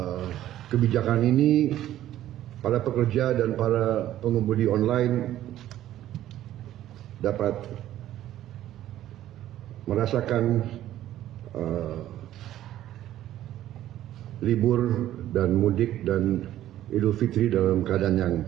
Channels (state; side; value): quieter; left; 12.9 dB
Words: kebijakan ini para pekerja dan para pengemudi online dapat merasakan libur dan mudik dan Idul Fitri dalam keadaan yang